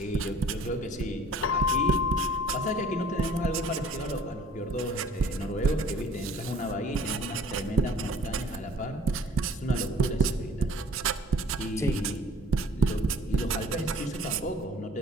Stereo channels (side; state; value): both; normal; correlation 0.51